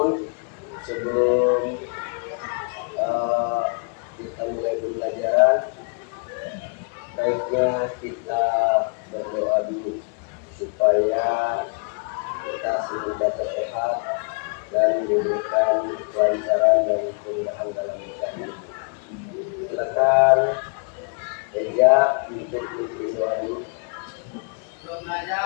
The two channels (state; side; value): quieter; right; 38.2 dB